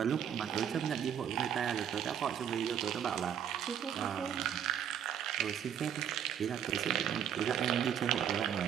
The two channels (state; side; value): quieter; left; 9.0 dB